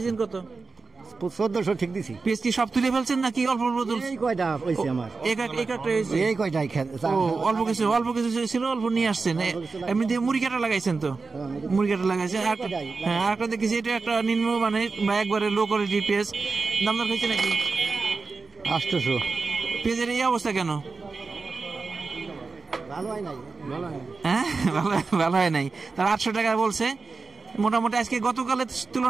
কত? 1400 ঠিক দিছি। পেঁয়াজ কি সব তুলে ফেলছেন নাকি অল্প অল্প তুলছেন? এই কয়টা হইছে আমার, এই কয়টাই অল্প কিছু ছিল, অল্প নিয়ে আসছেন। এমনিতে মুড়ি কাটা লাগাইছেন তো? মুড়ি কাটা লাগাইছেন। হ্যাঁ, আর একটা দেখেছি, এটা একটা নিম্ন মানে বা একবারে লো কোয়ালিটির পেঁয়াজ। দাম দর হয়েছে নাকি? 800। পেঁয়াজের এই অবস্থা কেন? ভালো হয় নাই। হ্যাঁ, ভালো হয় নাই। তার 800 টাকা বলছে। মোটামুটি আজকে গতকালের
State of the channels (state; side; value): quieter; left; 4.3 dB